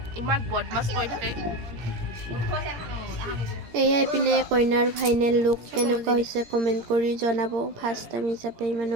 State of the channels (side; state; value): left; late; 17 ms